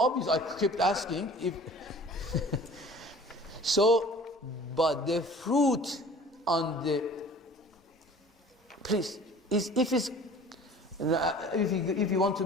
I kept asking if. So, but the fruit on the, please, if you want to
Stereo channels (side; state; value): both; normal; correlation 0.46